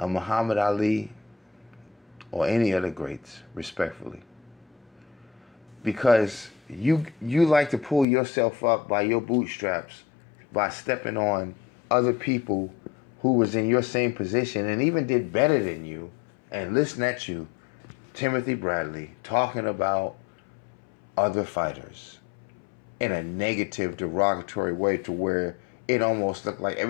Muhammad Ali or any other greats, respectfully. Because you like to pull yourself up by your bootstraps by stepping on other people who was in your same position and even did better than you, and listen at you, Timothy Bradley, talking about other fighters in a negative, derogatory way to where it almost looked like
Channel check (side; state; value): right; drops out; at 8.1 s